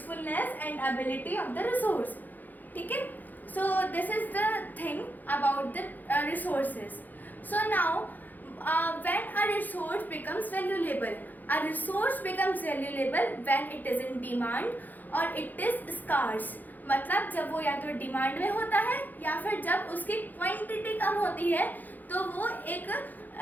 and ability of the resource. Okay? So this is the thing about the resources. So now when a resource becomes valuable when it is in demand or it is scarce. मतलब जब वो या तो demand में होता है या फिर जब उसकी क्वांटिटी कम होती है तो वो एक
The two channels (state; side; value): late; right; 0.084 ms